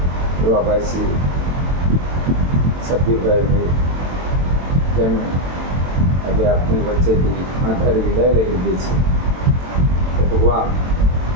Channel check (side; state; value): left; late; 23 ms